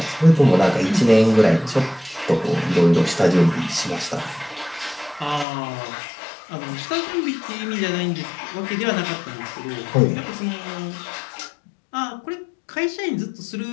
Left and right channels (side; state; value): right; drops out; at 5.5 s